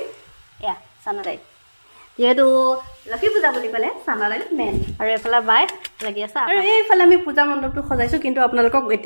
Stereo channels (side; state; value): both; inverted; correlation -1.00